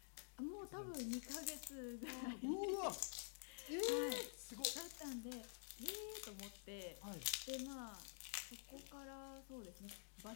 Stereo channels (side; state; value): right; silent; digital silence